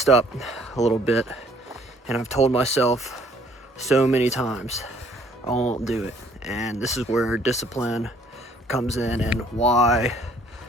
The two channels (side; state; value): both; normal; correlation 0.60